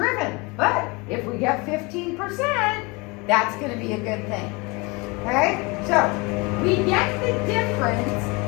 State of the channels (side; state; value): right; quieter; 26.9 dB